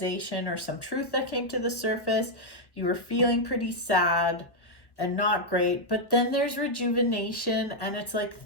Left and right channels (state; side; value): late; right; 1.3 ms